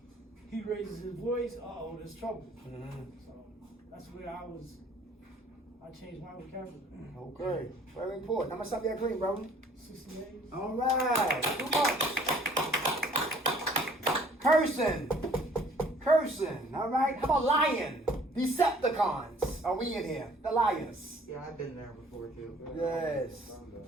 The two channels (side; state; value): both; normal; correlation 0.56